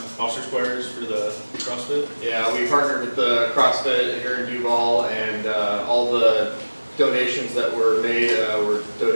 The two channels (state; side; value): inverted; both; correlation -1.00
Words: officer squares for the CrossFit. Yeah, we partnered with the CrossFit here in Duvall, and all the donations that were made were